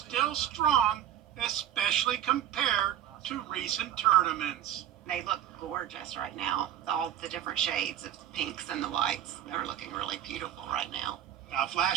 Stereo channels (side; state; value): left; quieter; 11.0 dB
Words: strong, especially compared to recent tournaments. They look gorgeous right now. All the different shades of pinks and the whites. They're looking really beautiful right now. Now, if